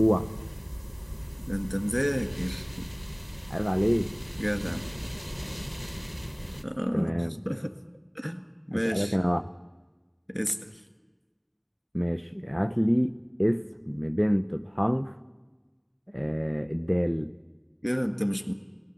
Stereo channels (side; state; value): both; identical; correlation 1.00